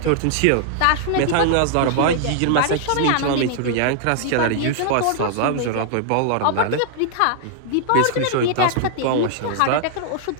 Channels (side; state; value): both; different; correlation -0.01